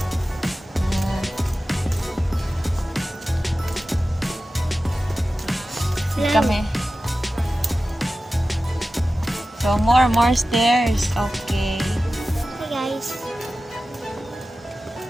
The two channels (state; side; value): normal; both; correlation 0.95